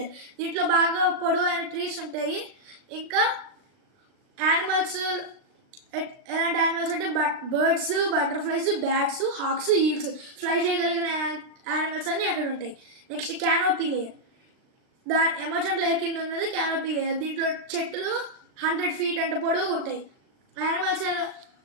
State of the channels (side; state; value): left; late; 38 ms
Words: దీంట్లో బాగా పొడవైన ట్రీస్ ఉంటాయి. ఇంకా యానిమల్స్ ఎలాంటి యానిమల్స్ అంటే birds, butterflies, bats, hawks, eagles, fly చేయగలిగిన యానిమల్స్ అన్నీ అక్కడ ఉంటాయి. Next canopy layer. Emergent layer కింద ఉన్నది క్యానోపీ లేయర్. దీంట్లో చెట్లు 100 feet అంత పొడవు ఉంటాయి.